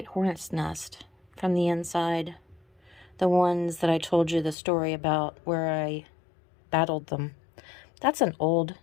hornet's nest from the inside. The ones that I told you the story about where I battled them. That's an old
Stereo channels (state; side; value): drops out; right; at 4.5 s